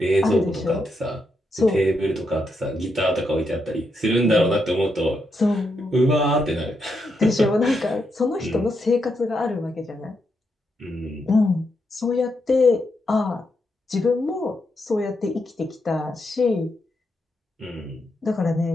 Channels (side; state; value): both; normal; correlation 0.82